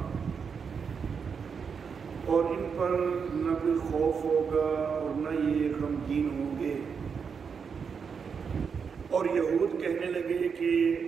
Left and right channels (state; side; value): quieter; left; 6.2 dB